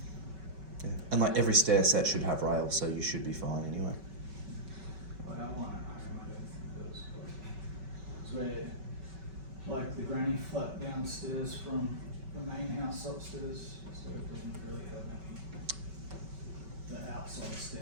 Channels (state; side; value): late; left; 5.3 ms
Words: Yeah. And like every stair set should have rails, so you should be fine anyway. Well, I want it. I don't think it does. It's where, like, the granny flat downstairs from the main house upstairs, so it doesn't really have any. The outside